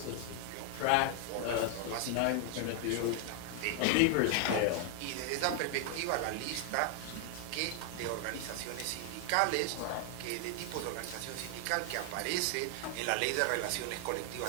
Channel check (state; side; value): different; both; correlation 0.00